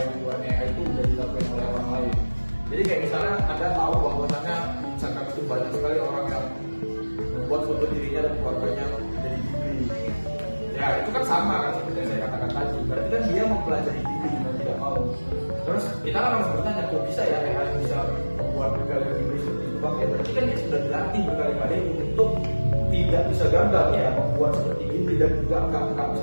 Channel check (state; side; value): inverted; both; correlation -1.00